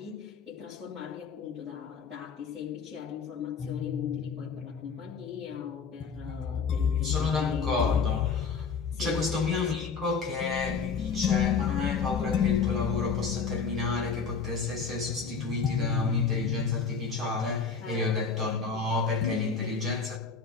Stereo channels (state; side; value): quieter; right; 5.5 dB